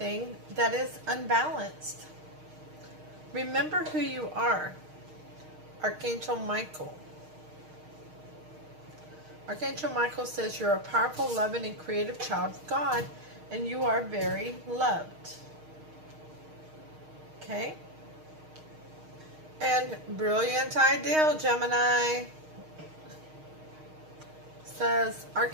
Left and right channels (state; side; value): late; left; 6.4 ms